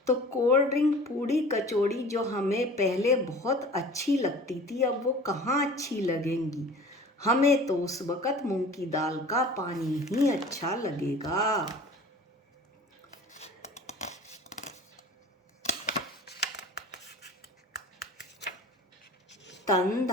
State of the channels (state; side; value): normal; both; correlation 0.42